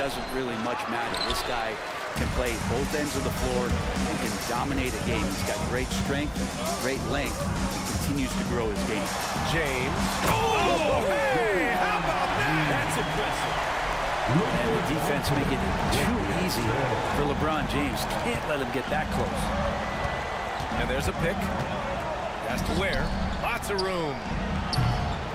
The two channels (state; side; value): identical; both; correlation 1.00